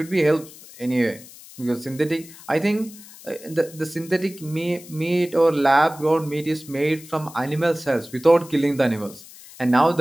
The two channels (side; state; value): left; noise; hiss, 19 dB below the sound